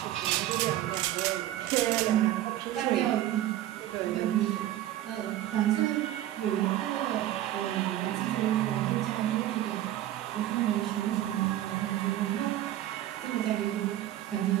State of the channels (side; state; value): left; quieter; 13.4 dB